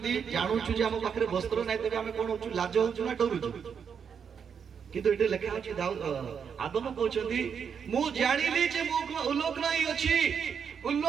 जानुछु जे हम पाखरे वस्त्र नै तबे हम कोन होछु लाज होछु ना डरुछु किंतु एटे लेखा अछि आदम कहउछंती मु जानिली जे मु उल्लोक नै अछि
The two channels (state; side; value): quieter; left; 7.0 dB